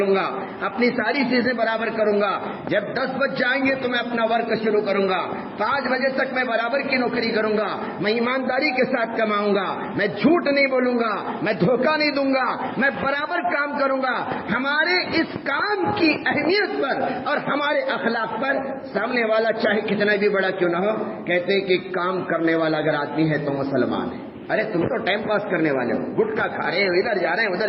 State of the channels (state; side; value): identical; both; correlation 1.00